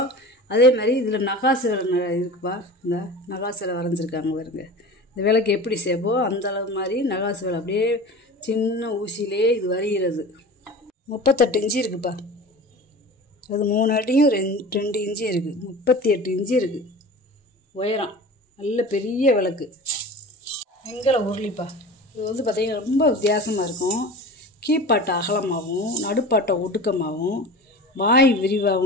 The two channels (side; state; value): both; normal; correlation 0.35